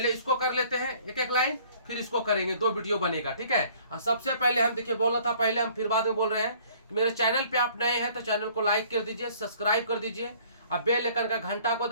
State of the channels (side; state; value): both; inverted; correlation -0.56